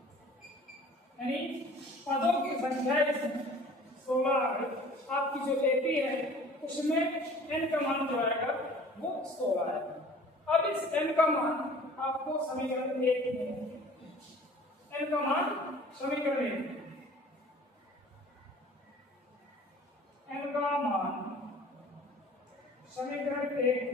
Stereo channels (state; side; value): normal; both; correlation 0.48